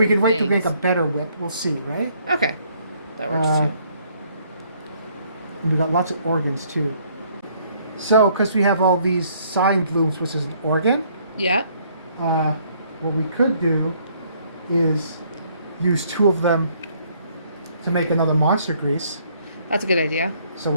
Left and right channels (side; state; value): both; inverted; correlation -0.65